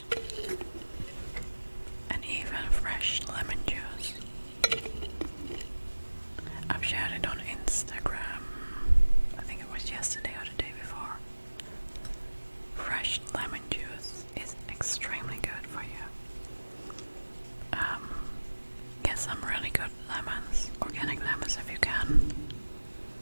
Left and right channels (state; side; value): inverted; both; correlation -1.00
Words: and even fresh lemon juice. I've shared it on Instagram. I think it was yesterday or the day before. Fresh lemon juice is extremely good for you. Get some really good lemons, organic lemons if you can.